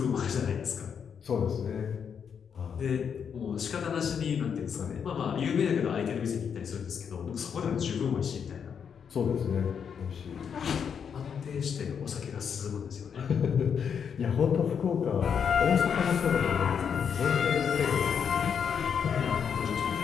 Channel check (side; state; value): right; quieter; 7.2 dB